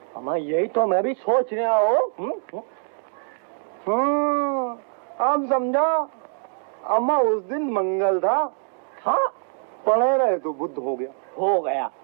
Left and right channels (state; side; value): silent; left; 59 dB below the other